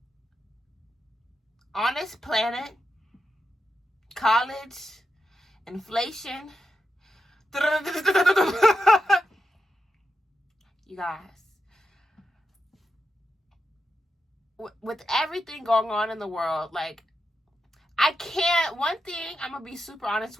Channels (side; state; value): both; normal; correlation 0.87